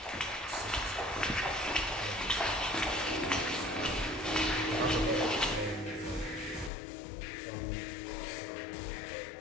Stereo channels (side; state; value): right; drops out; at 6.7 s